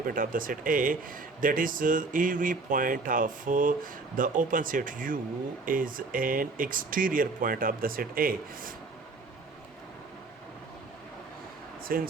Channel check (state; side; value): quieter; left; 3.8 dB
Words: of the set A. That is, every point of the open set U is an exterior point of the set A.